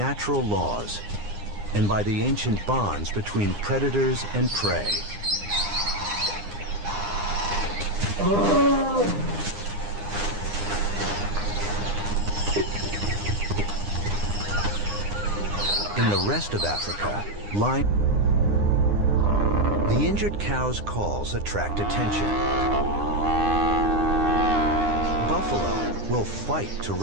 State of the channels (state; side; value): late; left; 9.8 ms